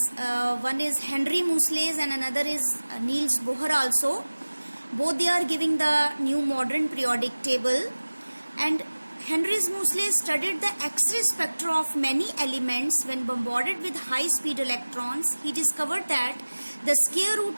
one is Henry Moseley and another is Niels Bohr also. Both they are giving the new modern periodic table, and Henry Moseley studied the X-ray spectra of many elements when bombarded with high-speed electrons. He discovered that the square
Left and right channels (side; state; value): both; inverted; correlation -1.00